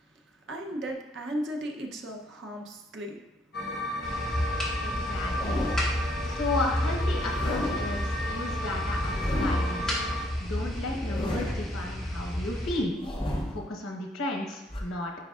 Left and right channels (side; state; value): both; normal; correlation 0.69